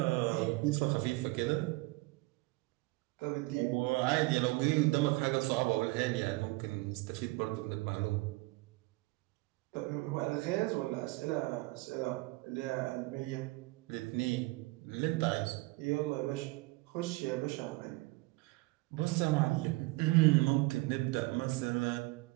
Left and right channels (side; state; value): left; quieter; 23.1 dB